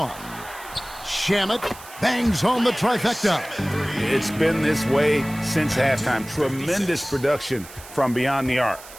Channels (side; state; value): right; noise; hiss, 17 dB below the sound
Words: Shamet bangs home the trifecta. It's been this way since halftime. Tremendous production from beyond the arc.